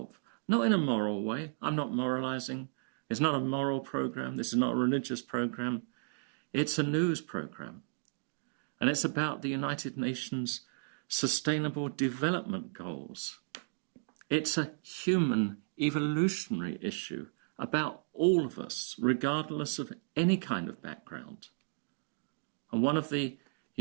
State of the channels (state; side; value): silent; left; digital silence